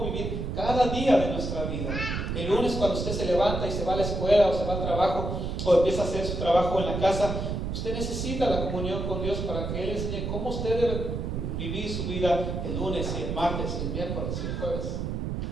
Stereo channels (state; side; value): noise; right; rumble, 3 dB below the sound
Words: vivir cada día de nuestra vida. El lunes, cuando usted se levanta y se va a la escuela o se va al trabajo o empieza a hacer su trabajo en la casa, usted necesita la comunión con Dios para que Él enseñe cómo usted debe vivir su vida el lunes y el martes y el miércoles y el jueves.